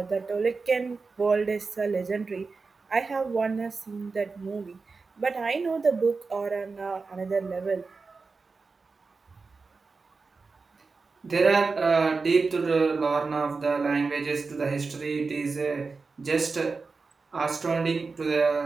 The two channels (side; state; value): left; quieter; 4.3 dB